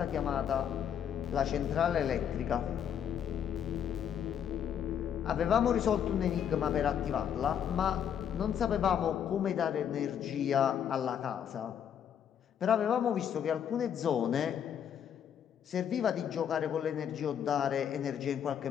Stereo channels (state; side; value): quieter; right; 8.7 dB